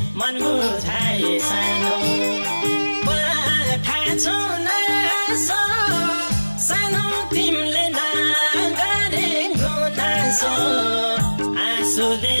मन बुझाए सानो पठाछु नासो सानो तिमीले नगरे गुनासो आँसुले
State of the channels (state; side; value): inverted; both; correlation -1.00